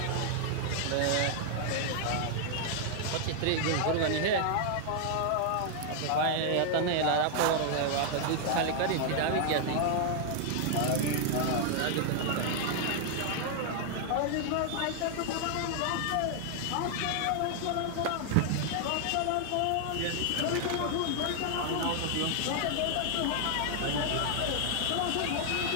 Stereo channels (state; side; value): different; both; correlation 0.00